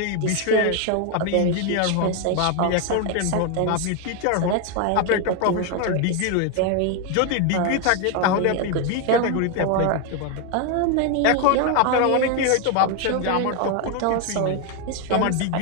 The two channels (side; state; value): both; different; correlation 0.01